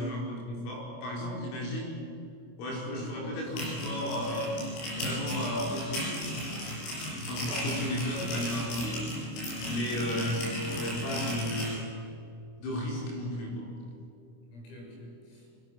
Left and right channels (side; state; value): right; late; 25 ms